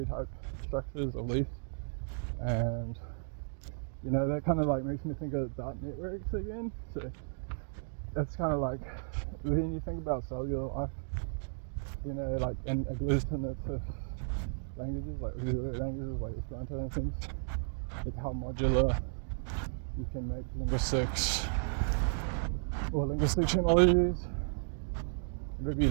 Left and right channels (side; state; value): left; silent; digital silence